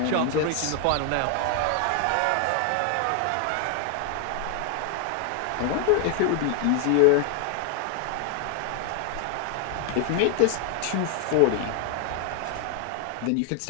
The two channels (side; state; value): both; different; correlation 0.00